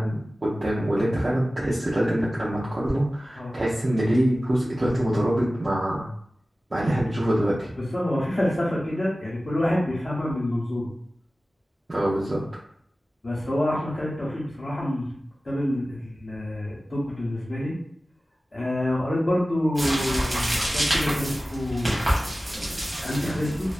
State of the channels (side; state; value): both; normal; correlation 0.96